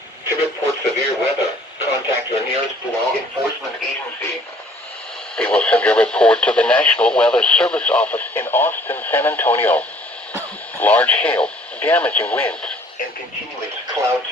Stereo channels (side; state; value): both; normal; correlation 0.56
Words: To report severe weather, contact your nearest law enforcement agency. They will send a report to the National Weather Service office in Austin, San Antonio. Large hail, damaging winds, and continuous